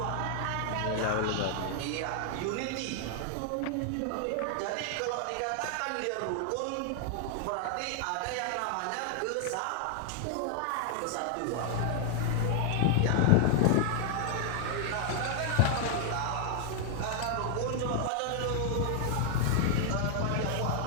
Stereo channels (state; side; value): different; both; correlation 0.00